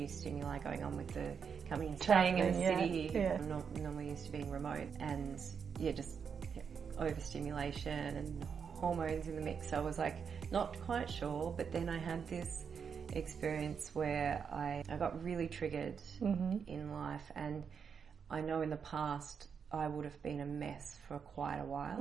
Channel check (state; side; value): quieter; left; 6.6 dB